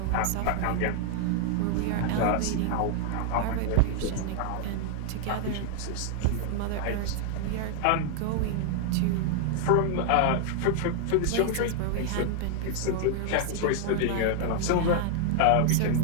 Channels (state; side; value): different; both; correlation 0.00